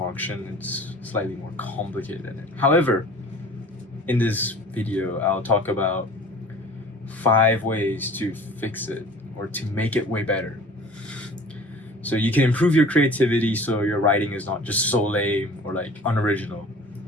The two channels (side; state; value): both; normal; correlation 0.44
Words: it's slightly more complicated than it. However, in this video, I'll talk about 5 ways to fix it or to make it way better. So you can improve your creativity so your writing is not just so lame or like unoriginal.